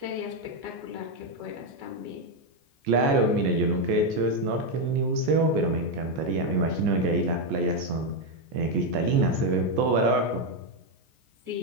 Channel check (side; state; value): left; late; 14 ms